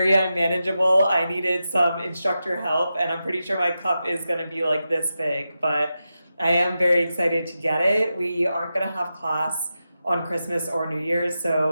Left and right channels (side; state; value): both; inverted; correlation -0.90